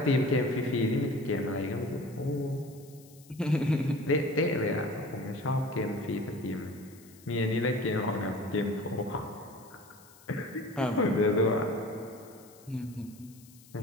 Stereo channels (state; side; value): noise; left; hiss, 24 dB below the sound